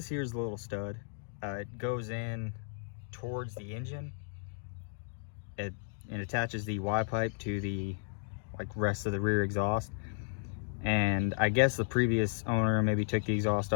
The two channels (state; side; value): silent; right; digital silence